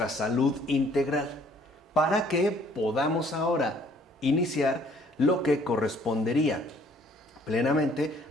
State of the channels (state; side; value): normal; both; correlation 0.60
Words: salud integral para que podamos ahora iniciar lo que correspondería plenamente